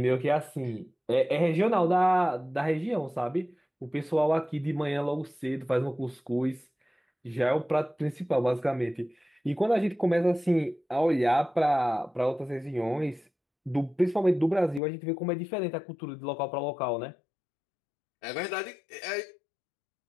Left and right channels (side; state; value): right; drops out; at 14.8 s